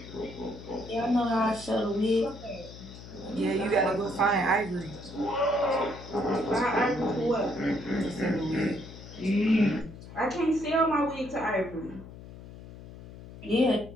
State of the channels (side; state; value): left; noise; hum, 15 dB below the sound